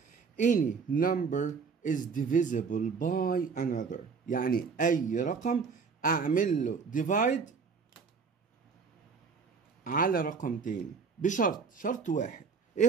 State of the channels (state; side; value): quieter; left; 5.4 dB